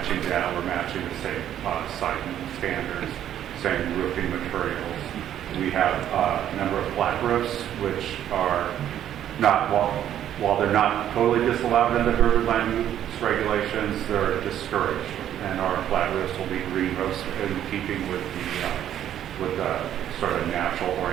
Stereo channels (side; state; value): left; quieter; 10.9 dB